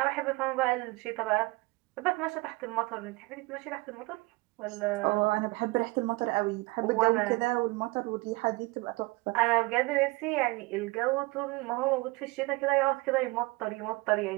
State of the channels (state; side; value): quieter; left; 24.2 dB